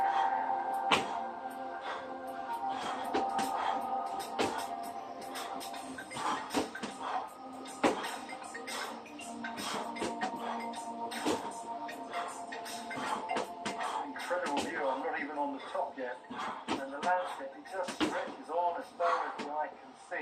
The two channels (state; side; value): identical; both; correlation 1.00